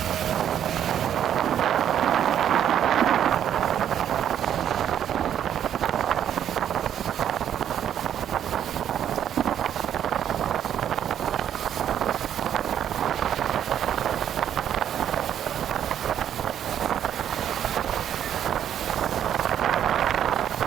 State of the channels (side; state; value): left; quieter; 9.9 dB